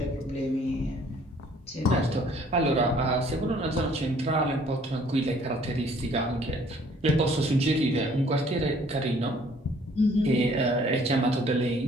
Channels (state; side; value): normal; both; correlation 0.59